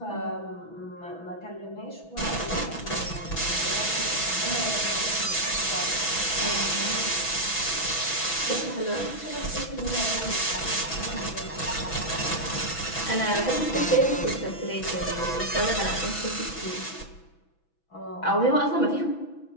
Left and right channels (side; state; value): right; late; 6.1 ms